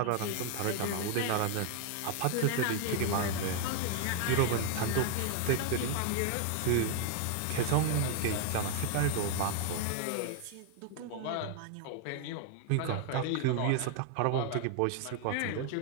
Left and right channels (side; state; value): both; different; correlation 0.00